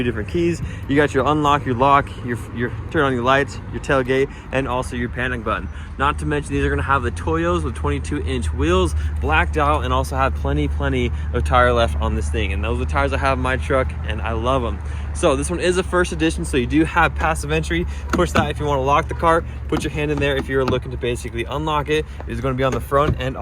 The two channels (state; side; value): identical; both; correlation 1.00